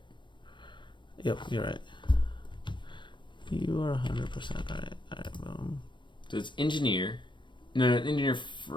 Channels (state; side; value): late; right; 0.23 ms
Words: Yep, you're right. You are 100% right. Alright, boom. So it's Engineer. No, Engineer